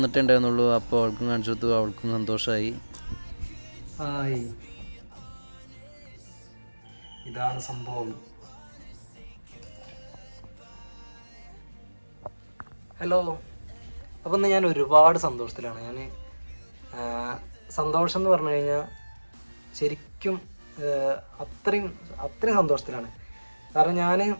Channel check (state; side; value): inverted; both; correlation -1.00